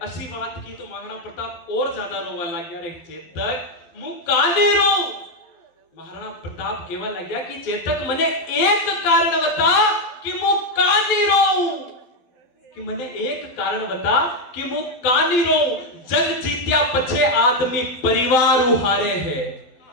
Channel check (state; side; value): late; right; 12 ms